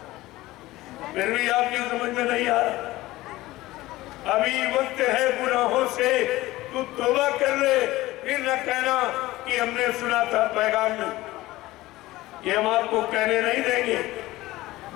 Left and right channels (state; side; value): quieter; right; 17.9 dB